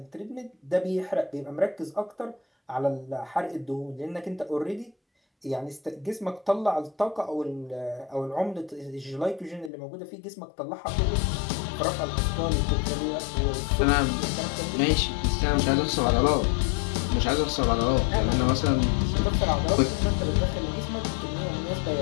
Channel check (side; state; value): right; drops out; at 9.7 s